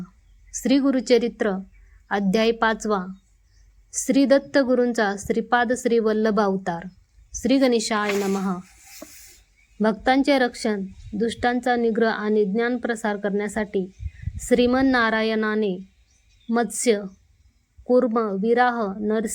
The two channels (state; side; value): identical; both; correlation 1.00